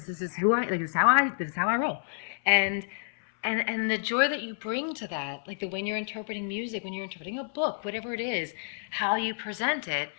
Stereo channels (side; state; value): right; silent; 58 dB below the other